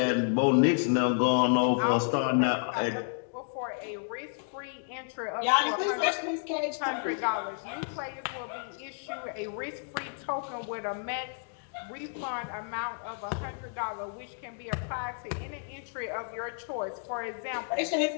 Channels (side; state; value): right; silent; digital silence